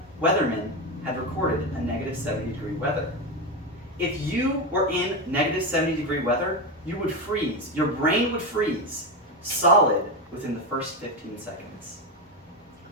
weathermen had recorded a negative 70 degree weather. If you were in negative 70 degree weather, you would freeze. Your brain would freeze solid within the first 15 seconds.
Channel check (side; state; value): both; normal; correlation 0.14